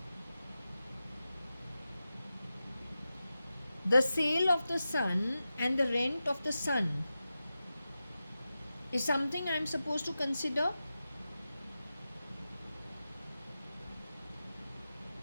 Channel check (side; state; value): both; inverted; correlation -0.92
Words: The sale of the sun and the rent of the sun is something I'm supposed to consider.